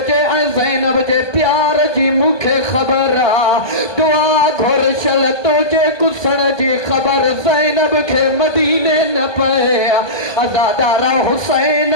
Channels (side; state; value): right; late; 1.2 ms